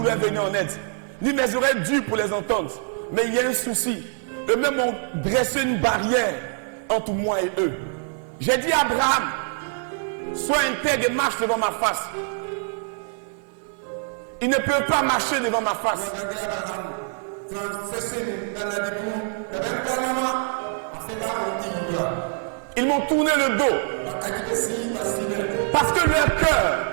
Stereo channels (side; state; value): left; silent; 60 dB below the other